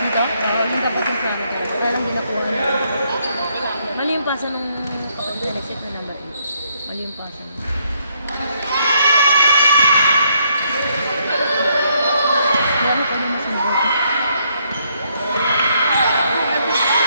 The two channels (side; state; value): both; inverted; correlation -0.72